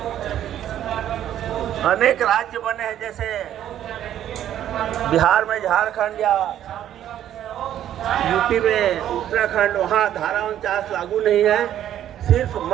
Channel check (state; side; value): quieter; left; 11.2 dB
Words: अनेक राज्य बने हैं, जैसे बिहार में झारखंड या यूपी में उत्तराखंड, वहाँ धारा 49 लागू नहीं है। सिर्फ